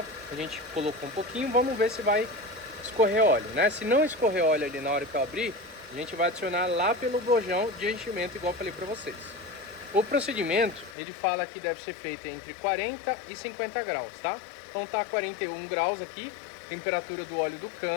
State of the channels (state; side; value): drops out; right; at 11.0 s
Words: a gente colocou um pouquinho, vamos ver se vai escorrer óleo, né? Se não escorrer óleo ali na hora que eu abrir, a gente vai adicionar lá pelo bojão de enchimento, igual eu falei para vocês. O procedimento, ele fala que deve ser feito entre 40 e 50 graus, tá? Então tá 41 graus aqui, temperatura do óleo do